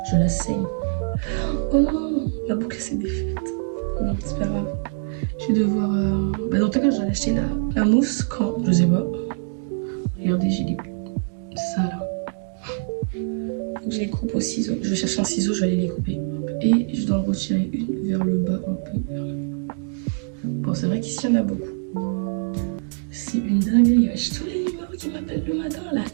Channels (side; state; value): left; silent; digital silence